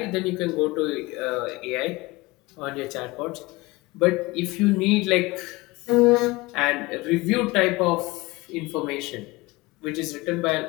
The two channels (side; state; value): right; quieter; 22.0 dB